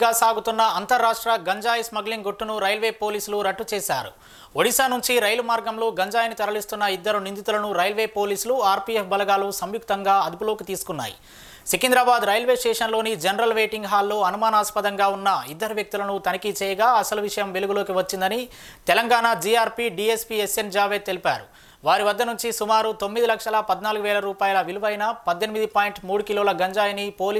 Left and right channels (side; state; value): both; identical; correlation 1.00